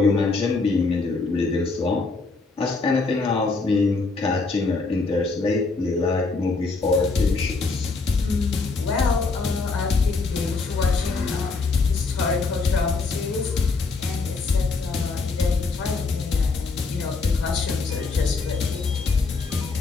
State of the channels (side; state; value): right; quieter; 4.0 dB